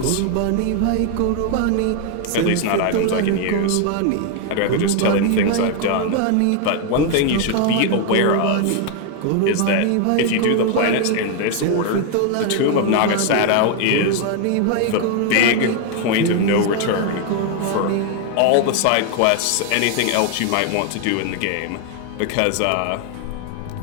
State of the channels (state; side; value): different; both; correlation 0.01